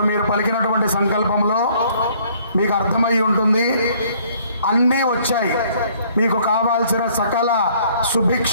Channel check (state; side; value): inverted; both; correlation -0.61